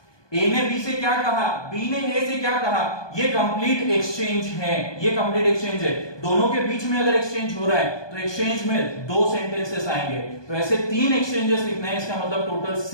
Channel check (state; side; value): late; right; 1.2 ms